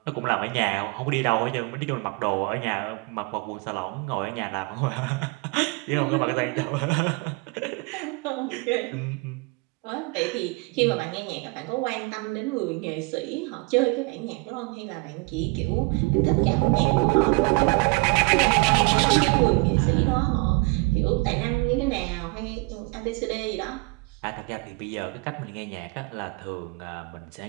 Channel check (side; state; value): left; quieter; 27.4 dB